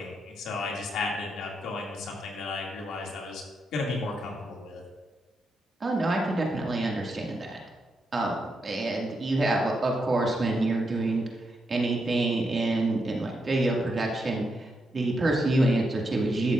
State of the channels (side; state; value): both; normal; correlation 0.83